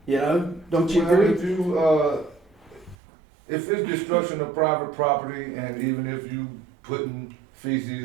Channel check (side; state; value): left; drops out; at 3.0 s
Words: Don't you agree? If it's destruction of private property, and even if you putting